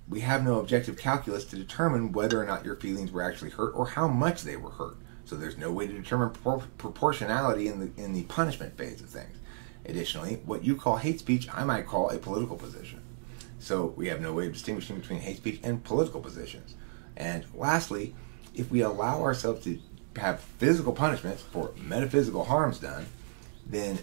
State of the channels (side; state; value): left; silent; digital silence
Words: We have no objective calculus to determine whether or not your feelings were actually hurt or how much they were hurt. So there's no way to determine proportionality in the punishment phase of things. Additionally, what you call hate speech, I might call a political position. So we have no way of distinguishing between hate speech and political positions. And lastly, if we allow ourselves to have physical punishments for metaphysical harms done, then